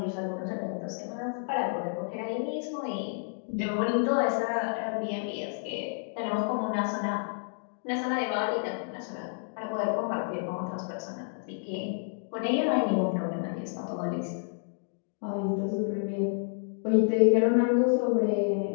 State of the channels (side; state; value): right; silent; digital silence